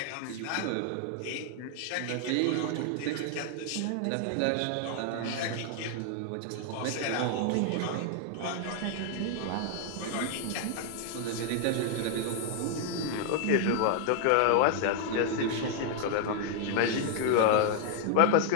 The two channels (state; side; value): different; both; correlation 0.00